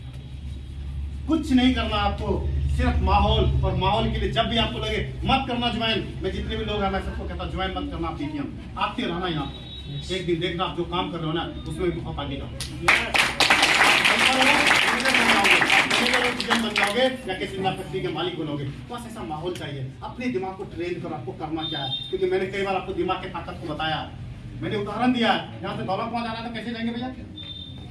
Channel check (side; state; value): both; identical; correlation 1.00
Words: कुछ नहीं करना आपको, सिर्फ माहौल, और माहौल के लिए जब भी आपको लगे मत करना ज्वाइन, मैं जितने भी लोग हैं मैं सबको कहता हूं ज्वाइन मत करना, आप डीटीएम आते रहना यहाँ पर। एक दिन देखना आप जो काम कर रहे हो ना उसमें बहुत आगे जाओ, बन जाओगे या किसी फैक्ट्री के मालिक बनोगे। बस ऐसा माहौल चाहिए। अपने दिमाग को ट्रेन करो, आपको करना क्या है, क्योंकि मैंने कई बार आपको दिमाग की ताकत को बताया, मैंने उदाहरण दिया। यहाँ से दौलतपुर जाना तो कैसे जाएंगे भैया?